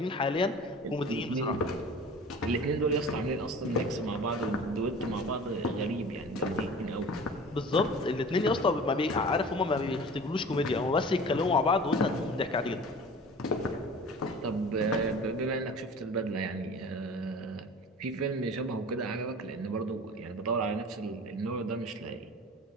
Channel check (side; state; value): both; normal; correlation 0.41